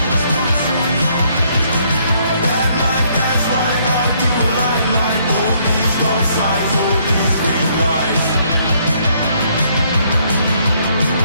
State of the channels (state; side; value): inverted; both; correlation -0.68